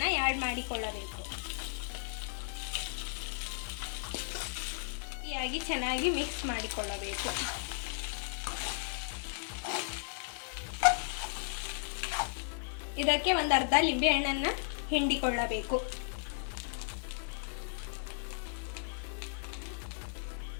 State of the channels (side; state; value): right; silent; digital silence